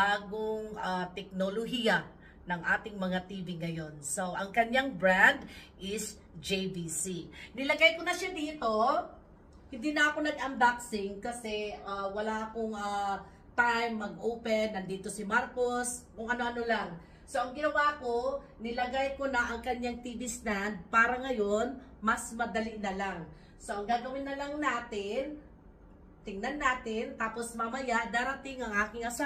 teknolohiya ng ating mga TV ngayon. So, ang kanyang brand is JVC. Nilagay ko na siya dito. Hindi na ako nag-unboxing kasi wala akong time mag-open. Nandito si Marcos, kung ano-ano lang. So, ang ginawa ko, nilagay ko na ang kanyang TV stand para ngayon, mas madali na lang. So, ang gagawin na lang natin, tingnan natin, tapos mamaya darating ang aking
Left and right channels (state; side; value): identical; both; correlation 1.00